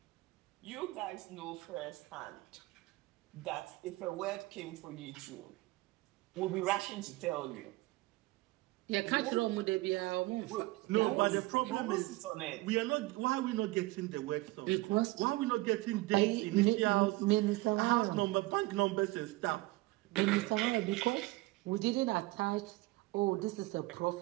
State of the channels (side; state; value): left; quieter; 20.5 dB